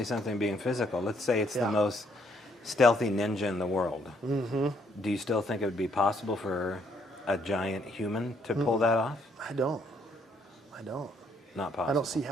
something being physical. Let's say it's Yeah. the most stealthy ninja in the world. Mm-hmm. Do you still think it would be possible for a giant human to pull that off? I don't. Not possible. I don't see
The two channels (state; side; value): normal; both; correlation 0.70